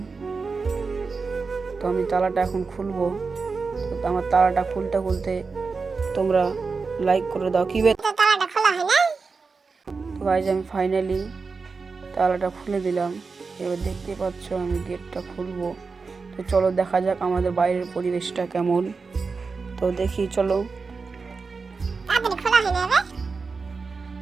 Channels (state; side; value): quieter; left; 4.6 dB